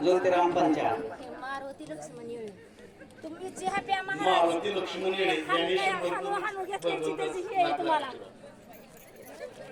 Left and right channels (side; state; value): both; identical; correlation 1.00